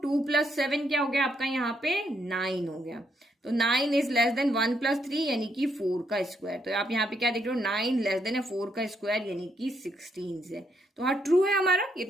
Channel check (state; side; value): normal; both; correlation 0.75